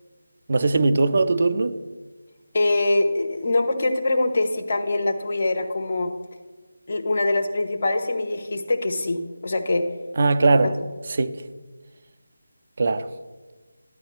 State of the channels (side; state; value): both; inverted; correlation -0.92